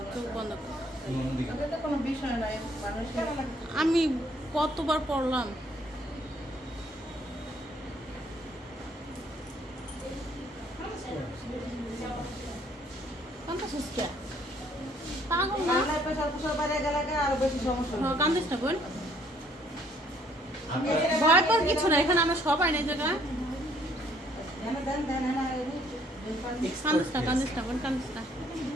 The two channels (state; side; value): normal; both; correlation 0.64